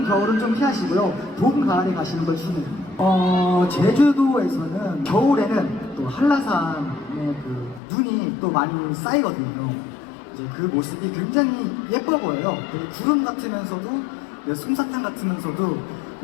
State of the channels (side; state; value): right; drops out; at 7.8 s